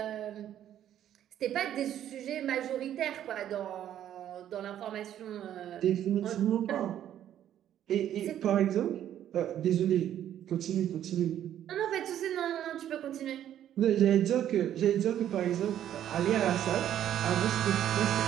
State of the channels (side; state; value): left; quieter; 10.9 dB